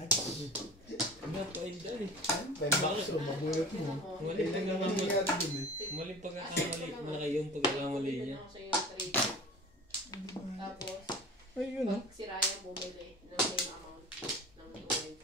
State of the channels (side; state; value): both; normal; correlation 0.38